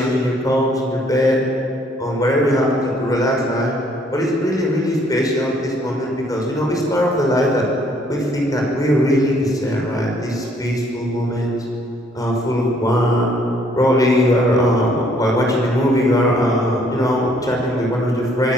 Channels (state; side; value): normal; both; correlation 0.64